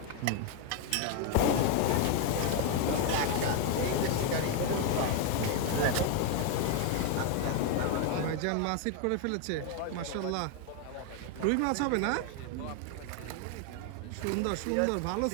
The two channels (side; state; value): both; different; correlation 0.01